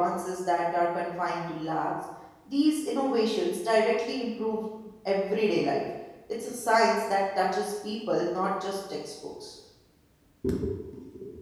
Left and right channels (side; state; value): both; identical; correlation 1.00